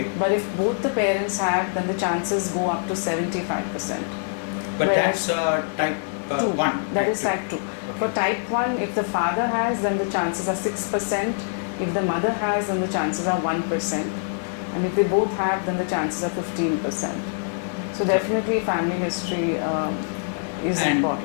But if both the parents have, then the chances go up to 75%. But Whereas that's type 2. 1. That is type 2. For type 1, if the father has, then the chances are 6%. If the mother has, then the chances are 1%. And if they both have, then the chances are 15%. So definitely family history is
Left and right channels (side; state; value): right; silent; 62 dB below the other